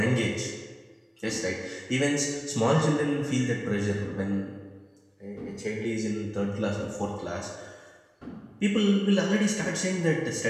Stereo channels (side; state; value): both; identical; correlation 1.00